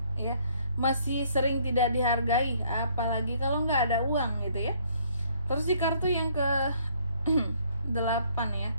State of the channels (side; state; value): both; inverted; correlation -0.64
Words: ya. Masih sering tidak dihargai, apalagi kalau nggak ada uang gitu ya. Terus di kartu yang ke 8 ya,